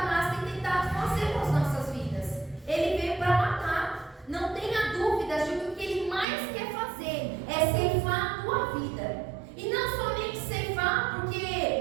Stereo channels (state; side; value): drops out; left; at 6.2 s